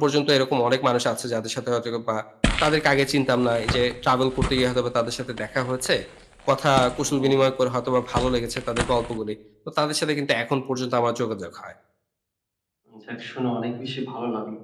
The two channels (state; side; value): identical; both; correlation 1.00